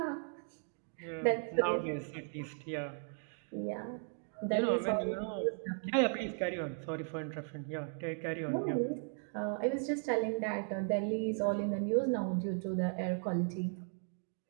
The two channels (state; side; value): silent; left; 53 dB below the other